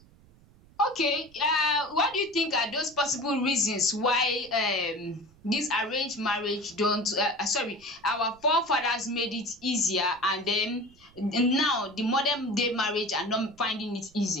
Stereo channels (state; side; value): noise; right; rumble, 27 dB below the sound